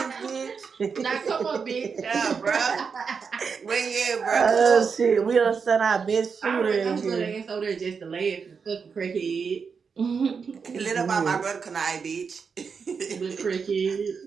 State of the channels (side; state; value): left; quieter; 5.8 dB